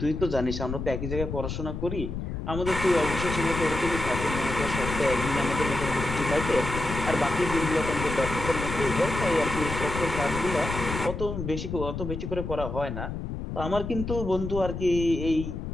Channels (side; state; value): left; noise; rumble, 5 dB below the sound